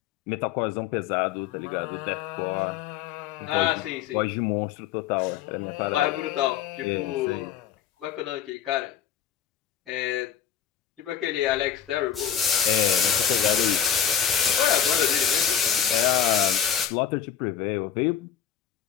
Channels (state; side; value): quieter; right; 9.0 dB